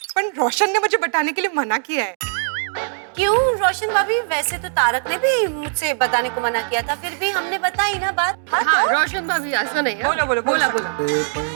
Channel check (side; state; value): left; silent; digital silence